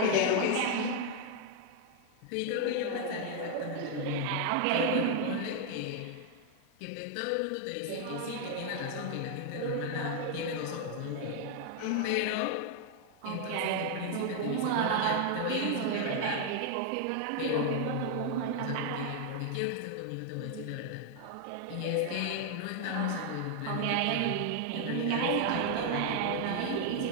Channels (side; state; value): both; different; correlation 0.00